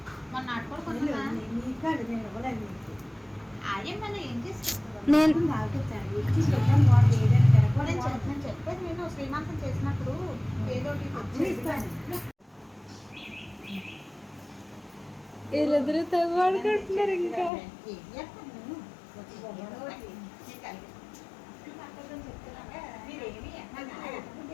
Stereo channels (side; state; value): right; drops out; at 17.5 s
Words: మొన్న ఆడుకోడు ఆయమ్మని ఏం చేస్తాను నేను చెప్పేది. నేను శ్రీమంతం చేసినప్పుడు ఏదో వీళ్ళిద్దరూ తగ్గుకుంటున్నారు. ఇంకా